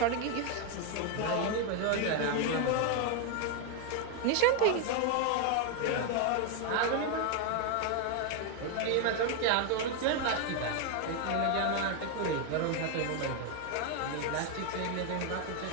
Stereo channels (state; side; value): different; both; correlation 0.01